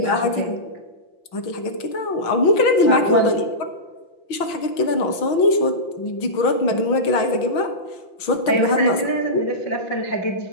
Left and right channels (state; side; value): late; right; 5.8 ms